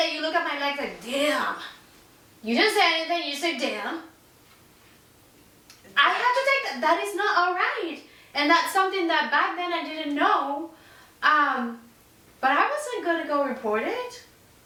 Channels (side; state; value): both; identical; correlation 1.00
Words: you look at my legs like, damn. You didn't say anything, you said damn. I have to take that. That is not all right. And that's something that back then I didn't know. But I wasn't going to go report it.